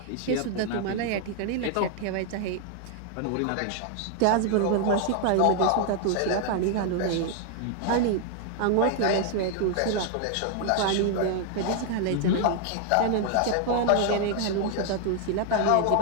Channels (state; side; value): different; both; correlation 0.00